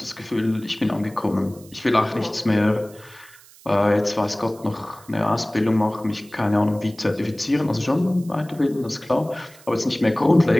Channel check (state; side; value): noise; right; hiss, 24 dB below the sound